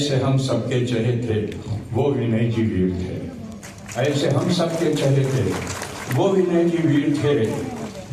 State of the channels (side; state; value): both; identical; correlation 1.00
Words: हम सबके चेहरे थे, वो विनय जी वीर थे। ऐसे हम सबके चेहरे थे, वो विनय जी वीर थे।